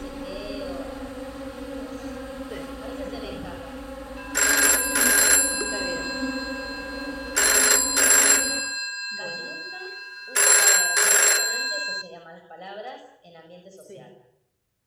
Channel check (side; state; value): both; identical; correlation 1.00